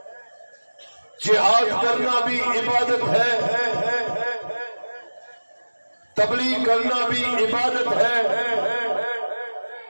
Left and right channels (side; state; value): both; inverted; correlation -1.00